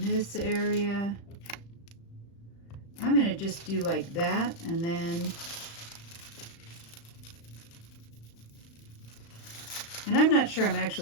this area. I'm going to just do like that, and then and I'm not sure I'm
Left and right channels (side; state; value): right; late; 35 ms